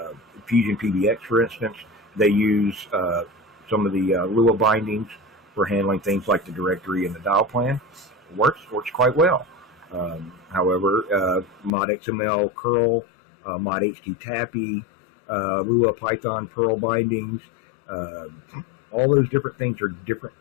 Fusion PBX, for instance, they use some of the Lua bindings for handling things like the directory and the Dialplan. Works quite well. However, Mod XML curl, Mod HT Lua Python Perl bindings, all those different things are different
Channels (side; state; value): right; drops out; at 11.7 s